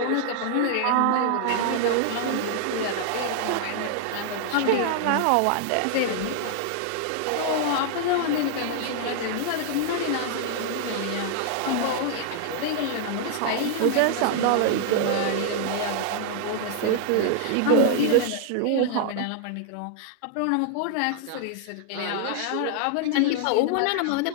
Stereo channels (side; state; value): both; different; correlation -0.01